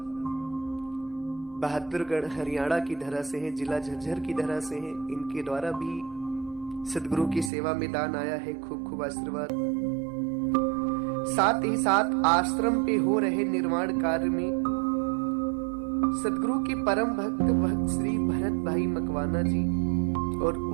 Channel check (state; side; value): drops out; left; at 7.5 s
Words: बहादुरगढ़, हरियाणा की धरा से हैं, जिला झज्जर की धरा से हैं, इनके द्वारा भी सद्गुरु की सेवा में दान आया है। खूब खूब आशीर्वाद। साथ ही साथ आश्रम पे हो रहे निर्माण कार्य में सद्गुरु के परम भक्त भक्त श्री भरत भाई मकवाना जी और